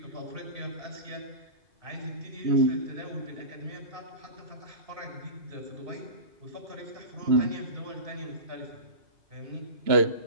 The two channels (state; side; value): late; left; 2.9 ms